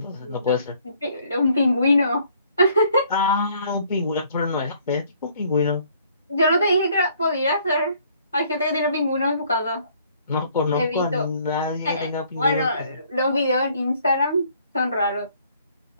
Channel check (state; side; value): inverted; both; correlation -0.62